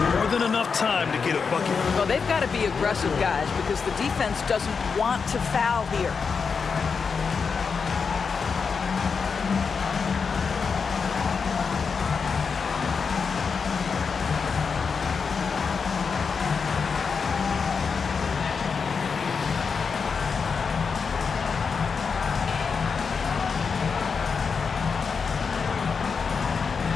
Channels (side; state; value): right; quieter; 5.5 dB